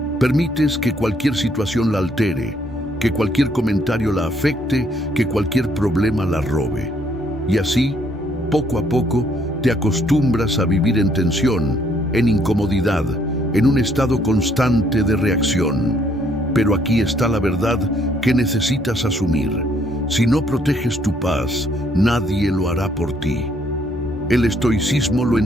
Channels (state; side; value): normal; both; correlation 0.68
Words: Permites que cualquier situación la altere, que cualquier comentario la afecte, que cualquier problema la robe. Y así, poco a poco, te acostumbras a vivir en tensión en incomodidad, en un estado constante de reacción. Pero aquí está la verdad que necesitas asumir. Si no proteges tu paz, nadie lo hará por ti. El estoicismo lo